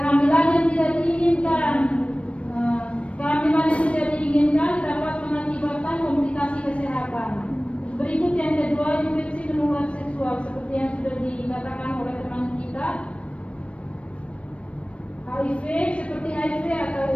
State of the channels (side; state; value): right; late; 0.062 ms